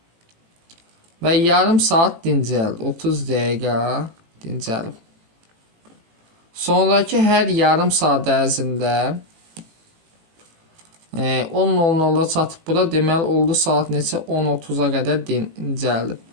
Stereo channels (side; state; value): left; late; 18 ms